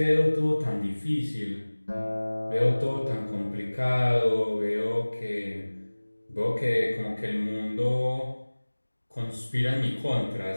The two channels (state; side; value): inverted; both; correlation -1.00